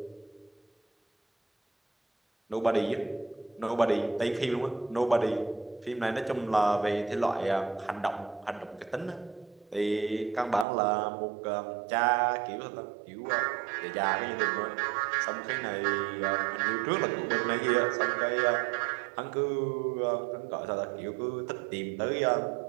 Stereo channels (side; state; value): left; drops out; at 10.7 s